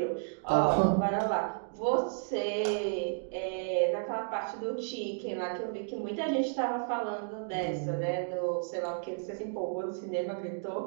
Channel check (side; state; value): left; silent; digital silence